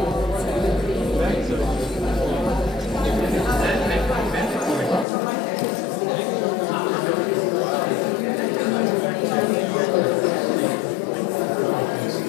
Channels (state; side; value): drops out; right; at 5.1 s